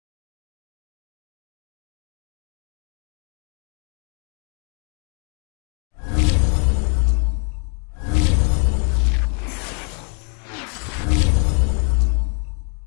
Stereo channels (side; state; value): right; quieter; 38.7 dB